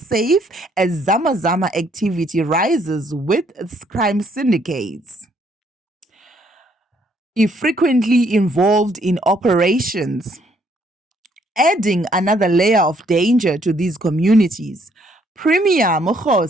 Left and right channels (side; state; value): both; normal; correlation 0.68